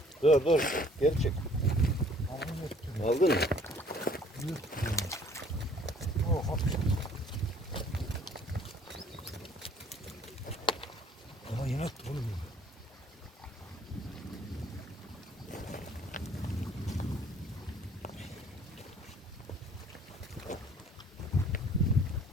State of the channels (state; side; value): normal; both; correlation 0.57